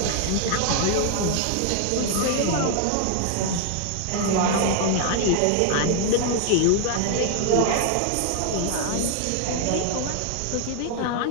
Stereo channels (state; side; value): different; both; correlation 0.00